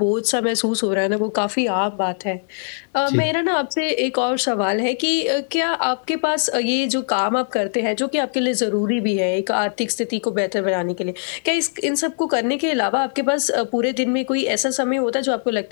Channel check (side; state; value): right; silent; digital silence